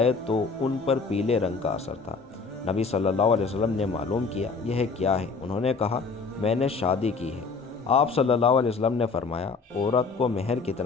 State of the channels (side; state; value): right; quieter; 4.6 dB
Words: تو ان پر پیلے رنگ کا اثر تھا۔ نبی صلی اللہ علیہ وسلم نے معلوم کیا، یہ کیا ہے؟ انہوں نے کہا، میں نے شادی کی ہے۔ آپ صلی اللہ علیہ وسلم نے فرمایا، عورت کو مہر